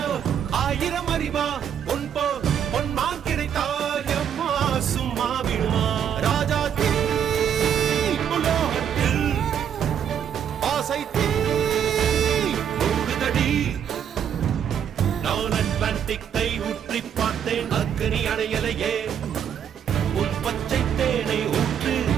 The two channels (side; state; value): left; quieter; 8.7 dB